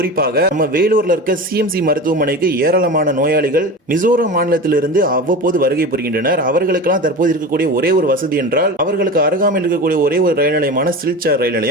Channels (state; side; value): normal; both; correlation 0.29